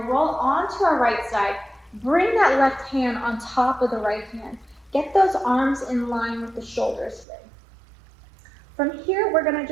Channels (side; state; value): left; drops out; at 7.2 s